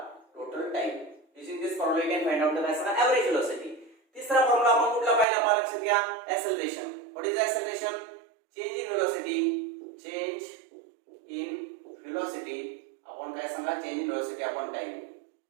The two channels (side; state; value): left; drops out; at 5.2 s